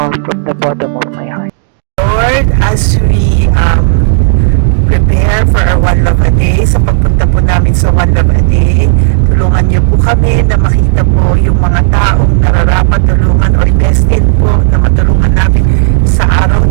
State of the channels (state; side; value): silent; left; digital silence